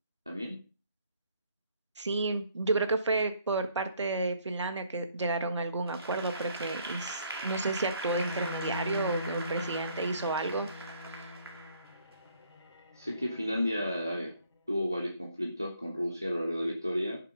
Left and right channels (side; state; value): both; inverted; correlation -0.65